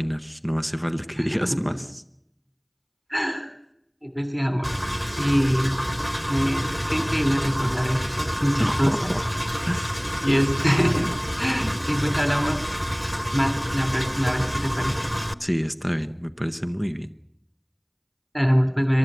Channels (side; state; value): both; identical; correlation 1.00